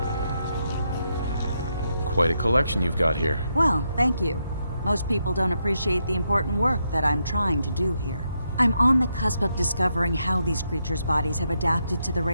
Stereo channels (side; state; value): both; inverted; correlation -0.81